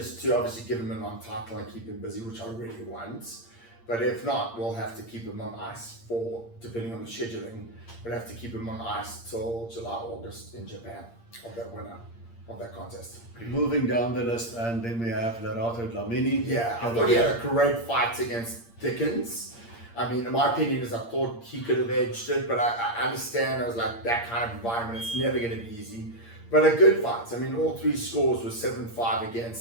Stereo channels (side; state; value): right; late; 8.6 ms